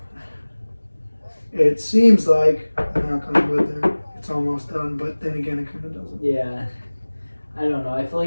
seems like, I'm not going to go there, it's almost done, but then again, it kind of doesn't. Yeah. I don't know. I feel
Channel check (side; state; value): both; inverted; correlation -1.00